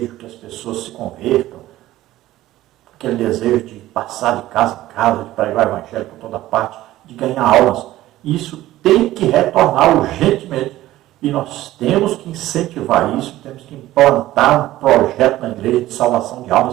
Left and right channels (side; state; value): left; quieter; 15.4 dB